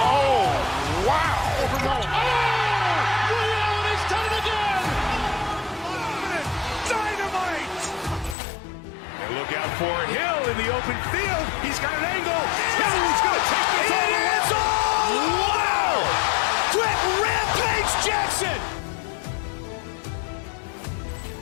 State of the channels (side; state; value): right; drops out; at 8.3 s